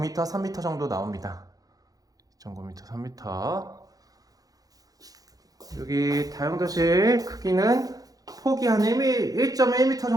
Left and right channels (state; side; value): late; left; 0.18 ms